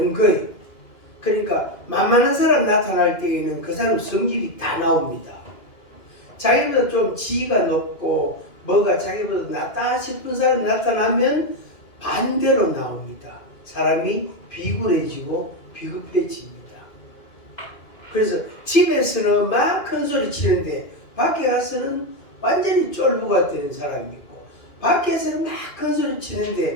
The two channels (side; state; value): right; late; 2.4 ms